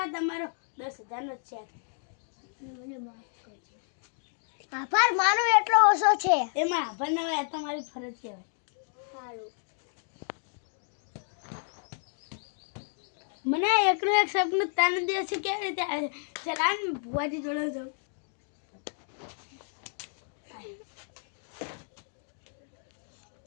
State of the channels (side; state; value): right; silent; digital silence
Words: તમારો 10,000 નો ચેક. આભાર માનો એટલો ઓછો છે. એમાં આભાર ના હોય તમારી ફરજ કહેવાય. સારું. મને એકલું એક સપનું તાન દિવસે કેવી રીતે આવે ચલાન ભુવાજી જોડે જાઉં.